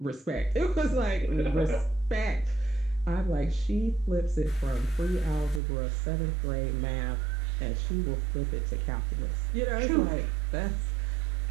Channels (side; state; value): left; drops out; at 5.6 s